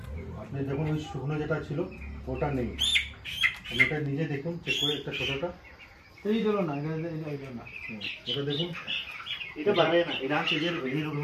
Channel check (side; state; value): both; identical; correlation 1.00